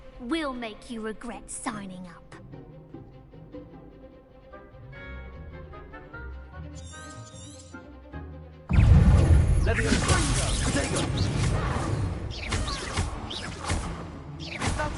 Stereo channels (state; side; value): identical; both; correlation 1.00